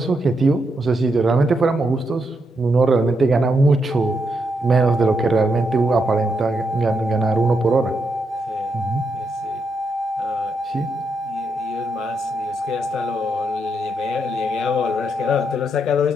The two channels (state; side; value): normal; both; correlation 0.81